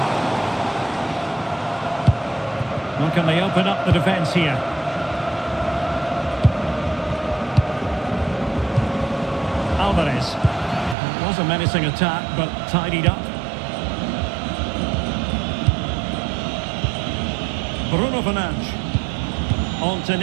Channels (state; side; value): drops out; left; at 11.0 s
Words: Well, can they open up the defence here? Alvarez. It was a menacing attack, but tidied up. Bruno Fernandes. On to